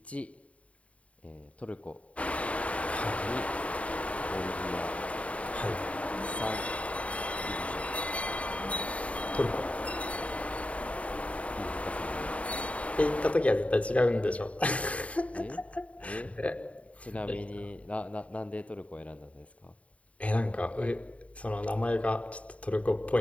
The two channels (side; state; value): right; late; 0.065 ms